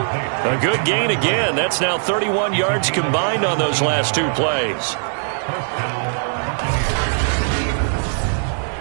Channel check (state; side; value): silent; left; 66 dB below the other